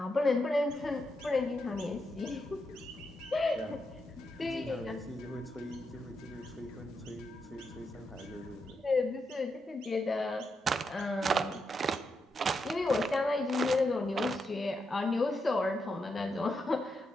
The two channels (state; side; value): normal; both; correlation 0.83